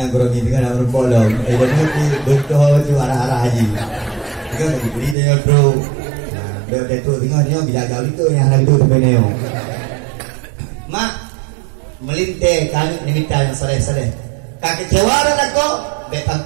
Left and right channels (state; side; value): drops out; left; at 5.2 s